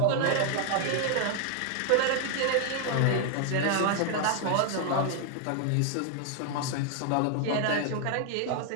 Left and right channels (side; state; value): both; different; correlation 0.00